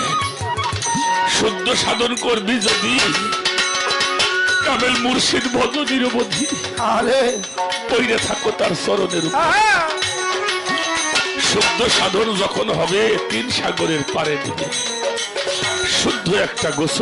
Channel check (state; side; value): identical; both; correlation 1.00